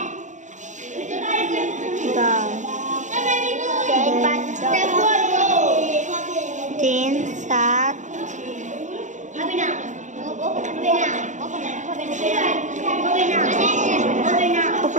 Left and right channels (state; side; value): late; left; 0.35 ms